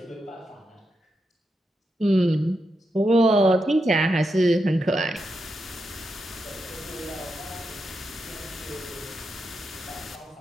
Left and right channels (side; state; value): both; normal; correlation 0.85